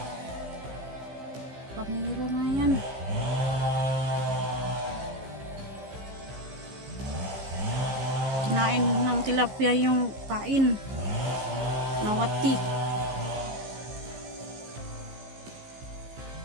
Pamiro na yan. Kinain ng tilapia yung pain. Nawati.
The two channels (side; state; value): left; late; 15 ms